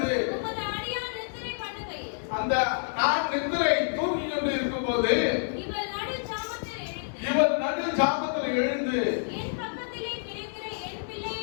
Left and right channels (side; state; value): right; silent; digital silence